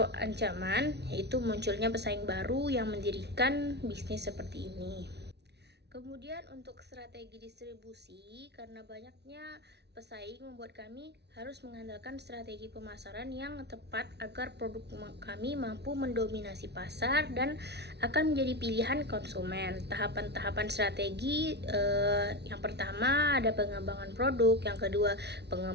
ancaman, yaitu munculnya pesaing baru yang mendirikan bisnis seperti ini. Kemudian untuk strategi distribusi, karena banyaknya pesaing membuat kami harus mengandalkan strategi pemasaran yang tepat agar produk kami mampu mendominasi pasar dan akan menjadi pilihan konsumen. Tahapan-tahapan strategi yang pertama ada pengembangan produk, yang kedua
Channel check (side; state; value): left; late; 0.49 ms